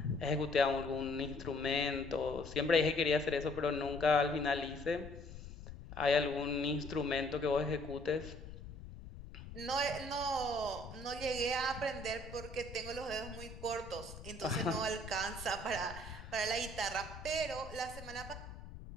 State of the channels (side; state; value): left; noise; rumble, 13 dB below the sound